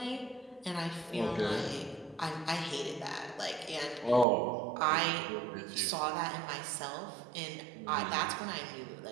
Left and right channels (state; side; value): drops out; left; at 4.2 s